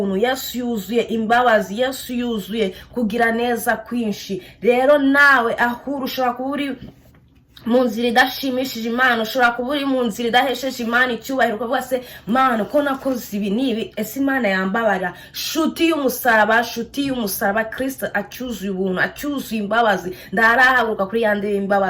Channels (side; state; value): both; identical; correlation 1.00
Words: Yesu yuzuye imbabazi, Yesu yuzuye kugira neza kwinshi. Rero nawe ahuru ushobora kuba uri mu nzira idashimishije Imana, ushobora kuba uri mu nzira idahesheje Imana icyubahiro, ukavuga se Mana ko nakoze ibi nibi, ese Imana yambabara? Shuti y'umusaraba Kristo acyuzuye ubuntu, acyuzuye imbabazi, ndarahaguruka kuri yande